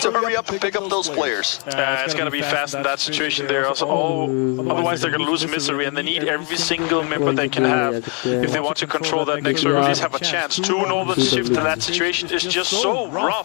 to hurry up and pick up those players. It's going to be fast in that situation there. Also, otherwise they're going to lose Misery, and they need every single member they can have if they want to control that next circle. At least have a chance. 2 northern shift in that situation is just so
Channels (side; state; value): right; quieter; 36.3 dB